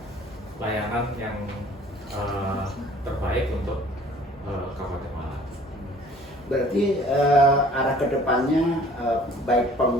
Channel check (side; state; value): both; normal; correlation 0.52